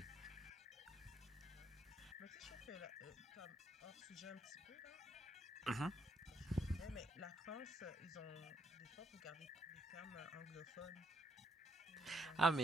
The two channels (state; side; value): normal; both; correlation 0.72